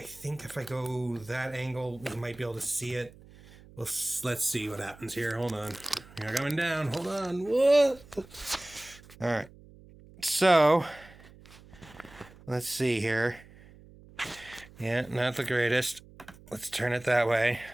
think if I go that angle, you might be able to see it. Well, let's see what happens here. Hold on. You're coming down. Hold on. What? All right. So, let's see here. Yeah, not the greatest. Let's turn it that way.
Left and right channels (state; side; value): noise; right; hum, 22 dB below the sound